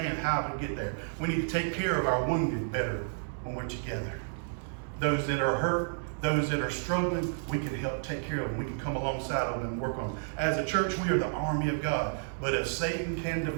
how to get there. We need to take care of our wounded better when we're together. Those that are hurt, those that are struggling, we can help take care of them. We can come alongside of them and work on them. As a church, we are the army of God. But if Satan can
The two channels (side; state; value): left; silent; digital silence